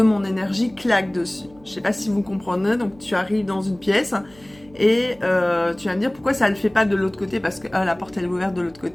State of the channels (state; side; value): noise; right; hum, 26 dB below the sound